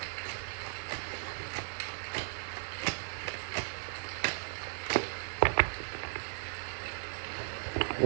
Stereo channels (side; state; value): left; silent; 54 dB below the other